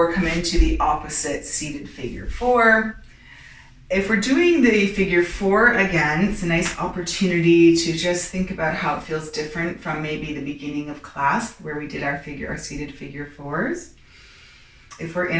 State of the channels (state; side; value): identical; both; correlation 1.00